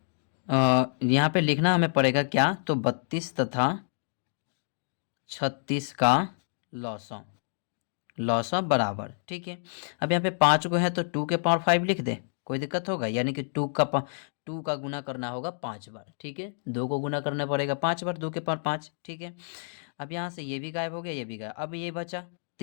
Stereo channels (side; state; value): right; silent; digital silence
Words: यहाँ पे लिखना हमें पड़ेगा क्या, तो 32 तथा 36 का लॉसा बराबर। ठीक है, अब यहाँ पे 5 को है तो 2 के पावर 5 लिख दे, कोई दिक्कत होगा, यानी कि 2 का गुना करना होगा 5 बार। ठीक है, 2 को गुना करना पड़ेगा 5 बार, 2 के पावर 5। ठीक है, अब यहाँ से ये भी गायब हो गया, ये भी गायब, अब ये बचा